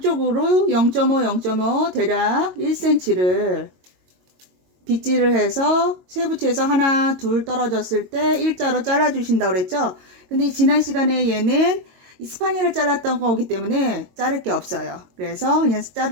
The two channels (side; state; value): left; late; 22 ms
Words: 0.5, 0.5 대략 1cm를 빗질을 해서 쇠붙이에서 하나, 둘 떨어졌을 때 일자로 잘라주신다고 그랬죠. 근데 지난 시간에 얘는 스파니엘을 잘랐던 거기 때문에 자를 게 없어요. 그래서 그냥